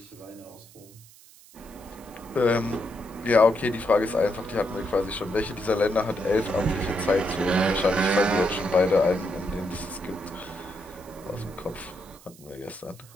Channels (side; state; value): right; noise; hiss, 23 dB below the sound